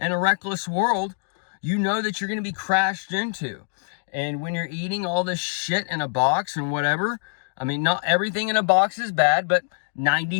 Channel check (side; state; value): right; silent; digital silence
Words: a reckless world, you know that you're going to be crashed into. And when you're eating all this shit in a box and whatever, I mean, not everything in a box is bad, but